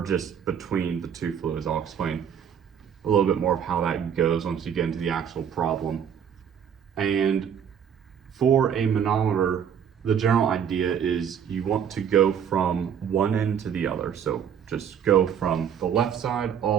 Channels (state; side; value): quieter; left; 8.2 dB